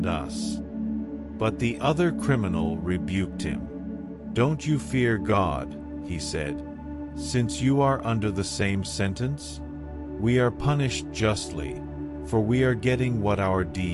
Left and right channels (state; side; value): identical; both; correlation 1.00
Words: us." But the other criminal rebuked him. "Don't you fear God," he said, "since you are under the same sentence? We are punished justly, for we are getting what our